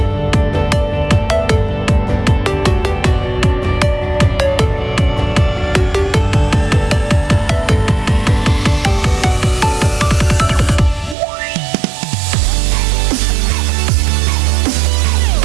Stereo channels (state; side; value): drops out; left; at 11.2 s